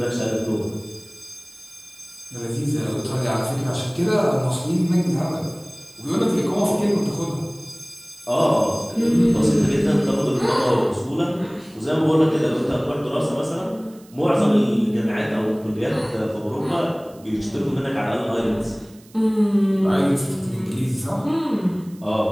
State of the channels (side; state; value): right; noise; hiss, 27 dB below the sound